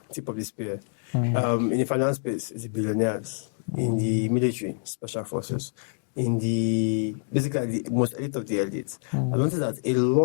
in the finance space, it's the billionaires, in the military, special forces, in the basically the most elite of the elites. I noticed that a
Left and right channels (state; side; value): silent; right; digital silence